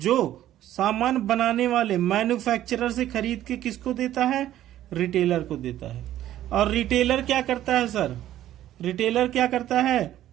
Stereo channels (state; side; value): quieter; left; 12.8 dB